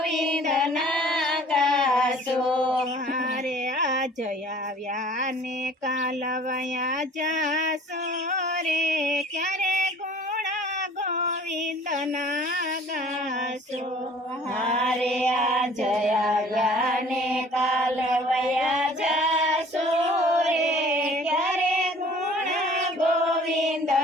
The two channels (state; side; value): normal; both; correlation 0.50